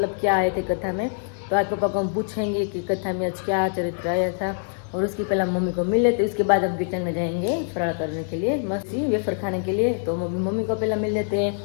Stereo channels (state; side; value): silent; right; digital silence